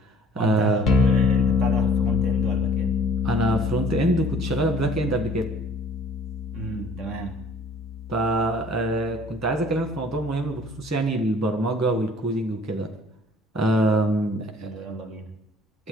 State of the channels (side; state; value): both; normal; correlation 0.54